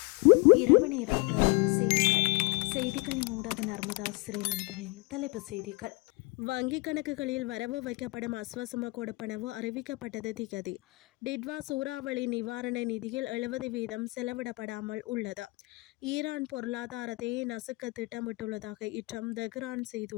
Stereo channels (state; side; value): quieter; right; 26.1 dB